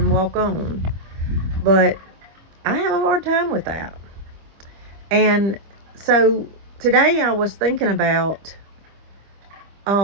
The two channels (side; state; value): left; late; 25 ms